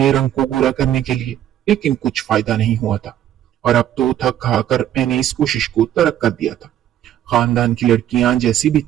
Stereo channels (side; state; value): left; quieter; 11.4 dB